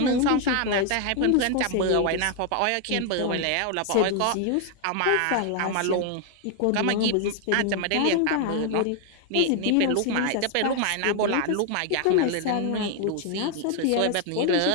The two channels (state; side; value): different; both; correlation 0.00